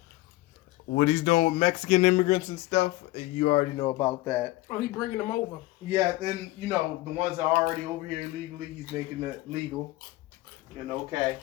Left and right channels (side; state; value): right; quieter; 18.5 dB